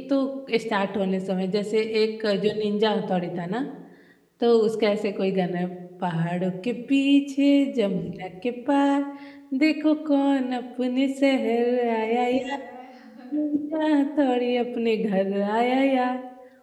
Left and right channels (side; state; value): both; identical; correlation 1.00